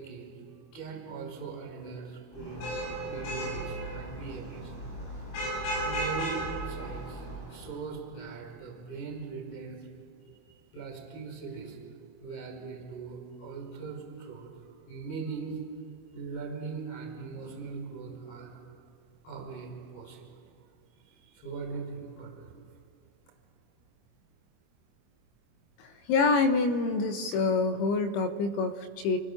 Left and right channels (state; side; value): late; right; 25 ms